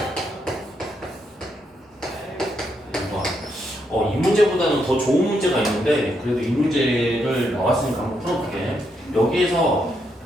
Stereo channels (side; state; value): both; normal; correlation 0.79